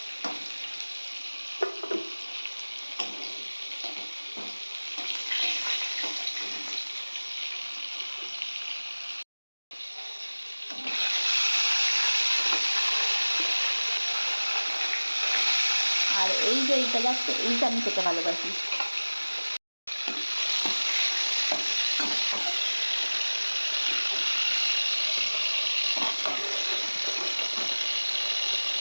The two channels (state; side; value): inverted; both; correlation -1.00